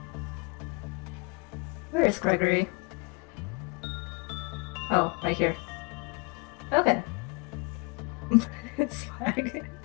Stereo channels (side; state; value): right; quieter; 30.1 dB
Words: Where is Gregory? Oh, right here. Okay. It's fine.